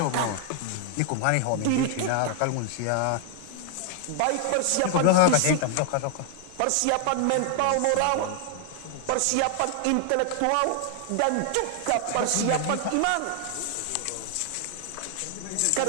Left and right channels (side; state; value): both; different; correlation 0.00